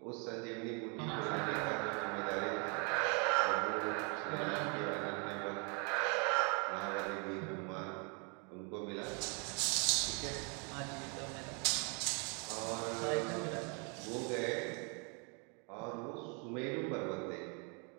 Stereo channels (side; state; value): left; quieter; 35.2 dB